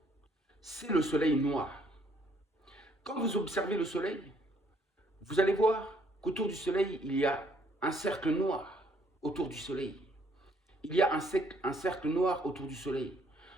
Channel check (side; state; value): both; normal; correlation 0.66